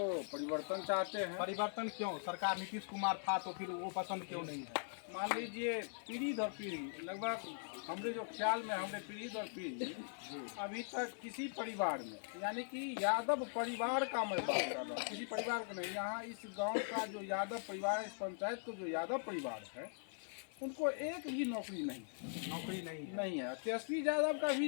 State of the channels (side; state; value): right; silent; 50 dB below the other